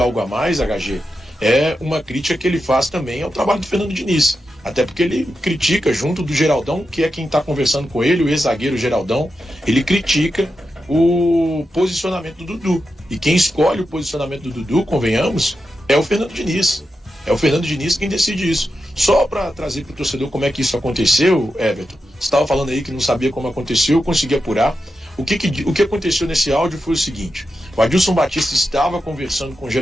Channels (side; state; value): both; normal; correlation 0.88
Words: a mais, HG, é uma crítica que ele faz também ao trabalho do Fernando Diniz. Até porque ele critica, junto do Geraldão, que é quem está conversando com ele, o ex-zagueiro Geraldão, ele critica o posicionamento do Dudu. E quem escolhe o posicionamento do Dudu, convenhamos, é o Fernando Diniz. É o Fernando Diniz quem decide isso. Só para trazer para o torcedor como é que isso aconteceu, Everton, você estava falando aí que não sabia como aconteceu, eu consegui apurar. O que aconteceu nesse áudio foi o seguinte: o Adilson Batista estava conversando com o